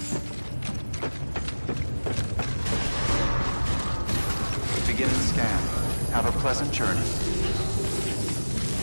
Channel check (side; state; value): both; inverted; correlation -1.00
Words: Beginning scan. Have a pleasant journey.